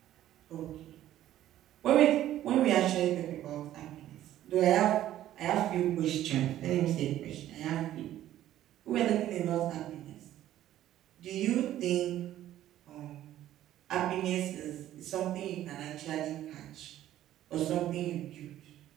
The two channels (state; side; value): quieter; left; 12.9 dB